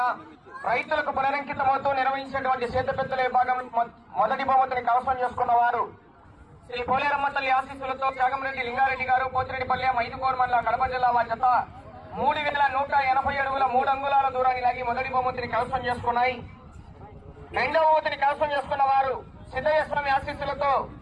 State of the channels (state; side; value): identical; both; correlation 1.00